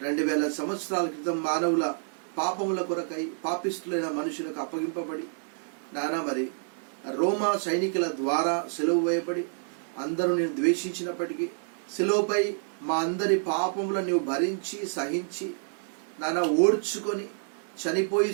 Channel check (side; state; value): left; silent; 59 dB below the other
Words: 2000 సంవత్సరాల క్రితం మానవుల పాపముల కొరకై పాపిష్టులైన మనుషులకు అప్పగింపబడి నానా మరి రోమా సైనికుల ద్వారా సిలువ వేయబడి అందరూ నేను ద్వేషించినప్పటికీ సిలువపై మా అందరి పాపములను నీవు భరించి సహించి నానా ఓడ్చుకొని చనిపోయి